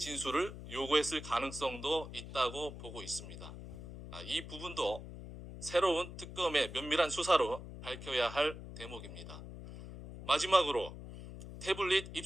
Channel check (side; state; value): left; noise; hum, 11 dB below the sound